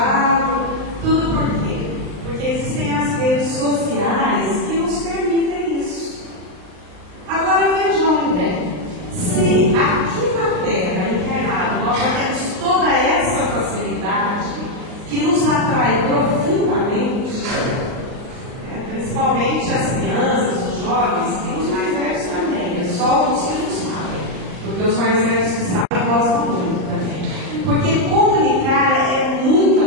Tudo por quê? Porque existem as redes sociais que nos permitem isso. Agora vejam bem, se aqui na Terra, encarnado, nós já temos toda essa facilidade que nos atrai profundamente, principalmente as crianças, os jovens, e os mais velhos também, é só os que não sabem, porque os mais velhos que sabem gostam muito também. Porque comunicar é muito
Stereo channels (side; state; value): left; late; 38 ms